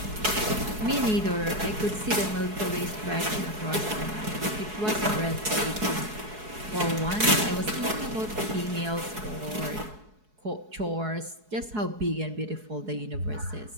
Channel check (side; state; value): left; late; 4.7 ms